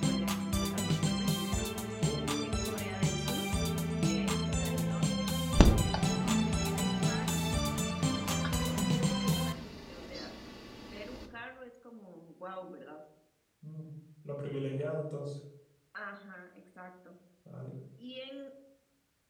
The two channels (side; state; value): both; identical; correlation 1.00